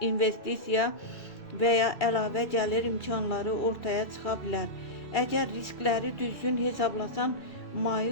investisiya və ya əlavə gəlir imkanları ortaya çıxa bilər. Əgər riskləri düzgün hesablasan,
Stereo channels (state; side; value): late; right; 2.4 ms